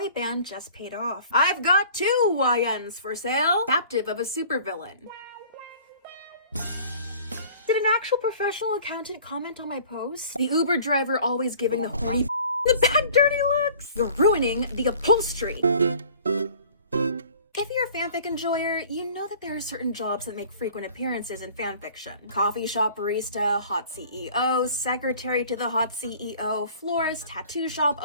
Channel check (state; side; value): inverted; both; correlation -0.49